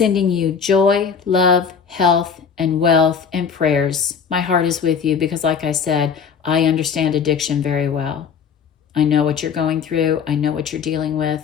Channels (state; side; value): quieter; right; 6.5 dB